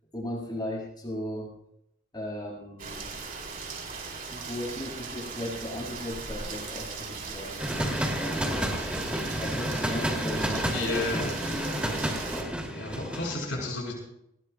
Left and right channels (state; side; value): normal; both; correlation 0.58